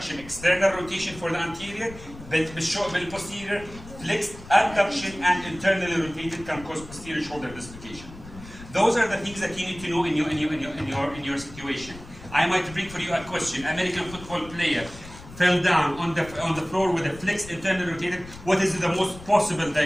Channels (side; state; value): left; noise; rumble, 16 dB below the sound